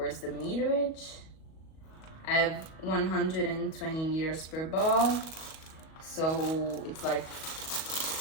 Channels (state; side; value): late; right; 37 ms